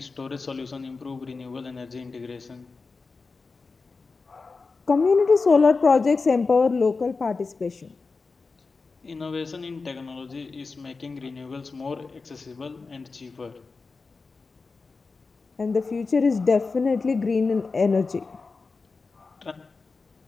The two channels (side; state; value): right; quieter; 4.2 dB